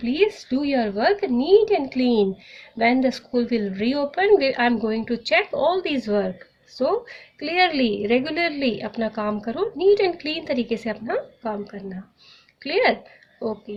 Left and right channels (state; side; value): identical; both; correlation 1.00